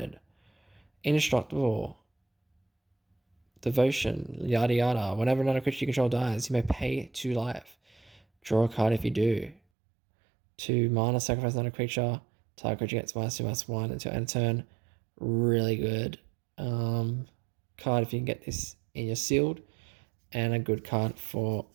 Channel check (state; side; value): drops out; left; at 9.6 s